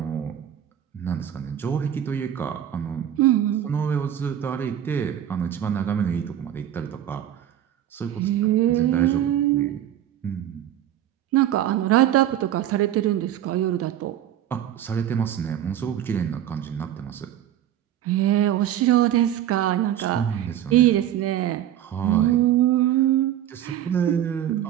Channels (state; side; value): quieter; left; 11.3 dB